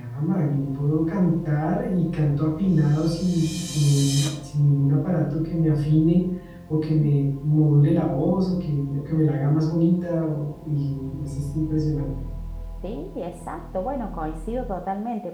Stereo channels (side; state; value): both; identical; correlation 1.00